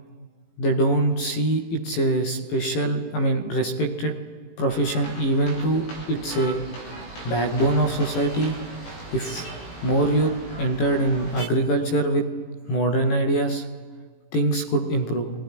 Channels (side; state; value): right; late; 18 ms